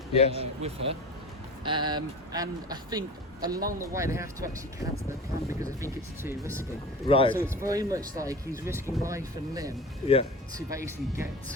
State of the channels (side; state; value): both; normal; correlation 0.35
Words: with her. And I think along the way they have to actually cancel their plan because I think it's too risky. Right. So it's very much like he's risking life and limb to basically get